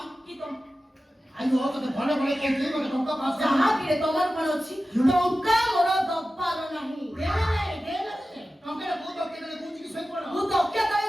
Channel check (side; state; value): both; normal; correlation 0.94